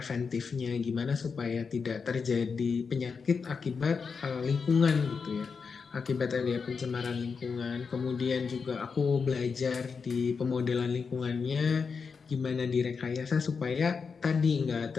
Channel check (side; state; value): right; quieter; 5.4 dB